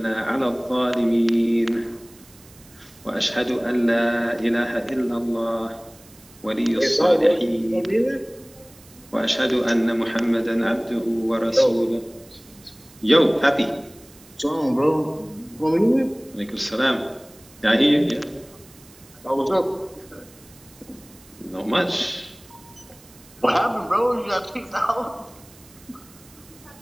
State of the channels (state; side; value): noise; right; hiss, 25 dB below the sound